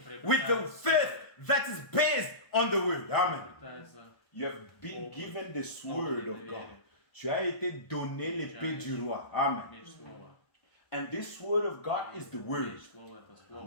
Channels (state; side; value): late; right; 1.2 ms